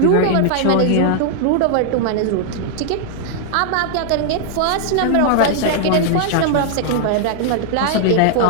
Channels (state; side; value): different; both; correlation -0.01